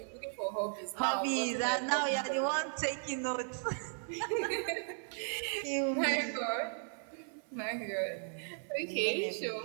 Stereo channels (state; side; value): silent; left; 54 dB below the other